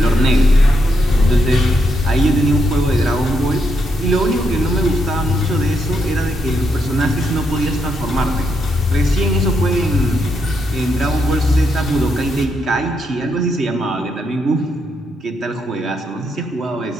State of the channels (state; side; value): normal; both; correlation 0.80